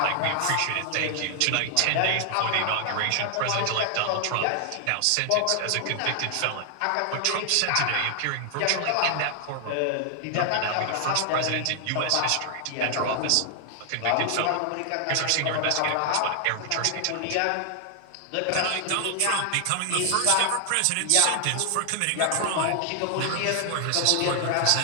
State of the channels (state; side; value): different; both; correlation 0.00